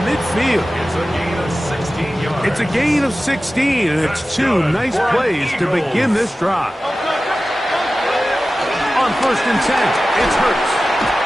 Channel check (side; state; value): both; normal; correlation 0.95